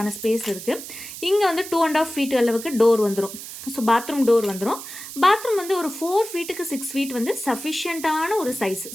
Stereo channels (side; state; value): right; noise; hiss, 11 dB below the sound